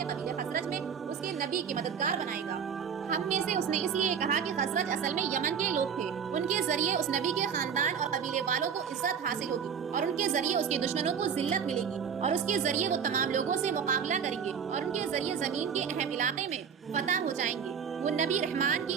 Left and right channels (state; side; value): quieter; left; 7.1 dB